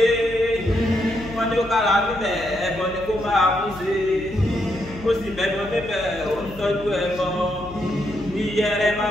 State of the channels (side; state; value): left; noise; hum, 16 dB below the sound